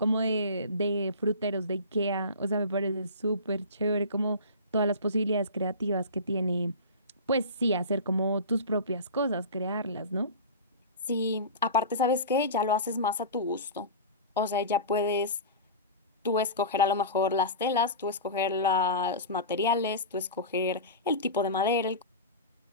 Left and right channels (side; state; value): both; inverted; correlation -0.30